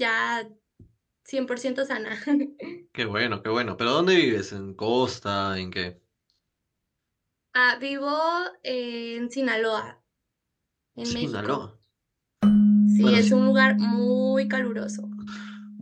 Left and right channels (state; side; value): identical; both; correlation 1.00